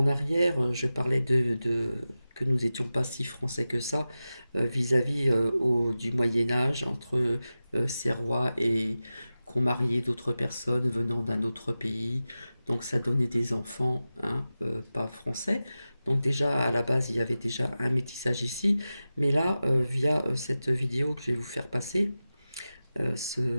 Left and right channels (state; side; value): inverted; both; correlation -0.94